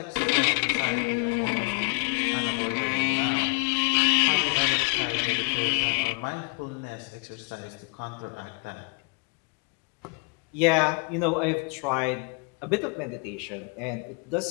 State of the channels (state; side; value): quieter; right; 35.0 dB